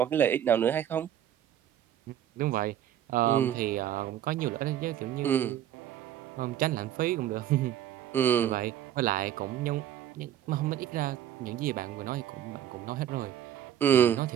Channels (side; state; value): left; quieter; 10.9 dB